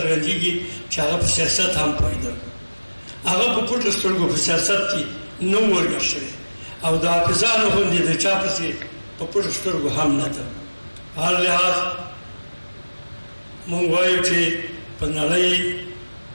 چې هغه په سیاست هم پوهېده. هغه په پټو سترګو په سیاست کې نه و ورګډ شوی او د حافظانو غوندې د چا پسې په پټو سترګو هم نه ده. هر لحاظ مونږ وایو چې په نړۍ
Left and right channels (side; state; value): both; inverted; correlation -1.00